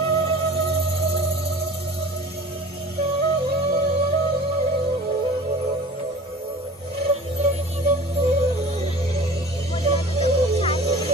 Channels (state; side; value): normal; both; correlation 0.42